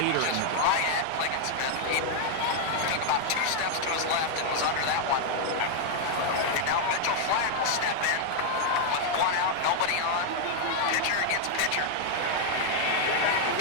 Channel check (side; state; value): both; different; correlation 0.00